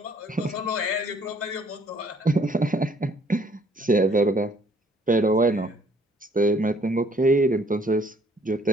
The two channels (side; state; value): both; normal; correlation 0.62